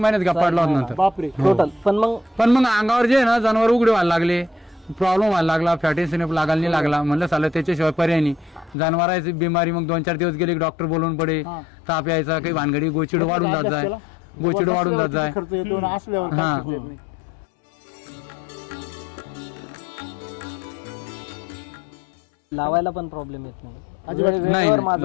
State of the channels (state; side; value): drops out; right; at 8.8 s